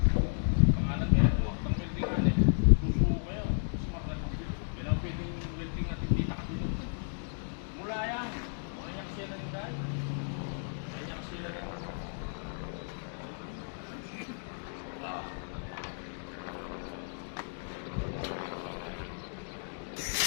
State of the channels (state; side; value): silent; right; digital silence